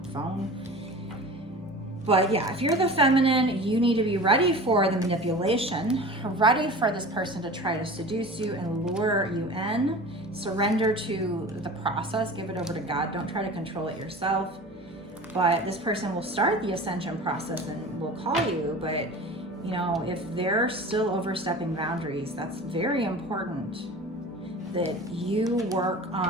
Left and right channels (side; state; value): both; normal; correlation 0.37